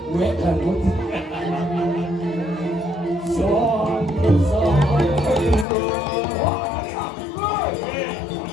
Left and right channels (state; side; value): drops out; right; at 5.7 s